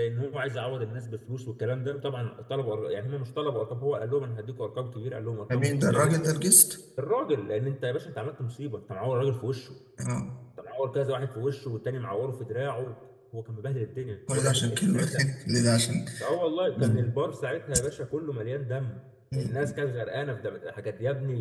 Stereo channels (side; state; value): both; identical; correlation 1.00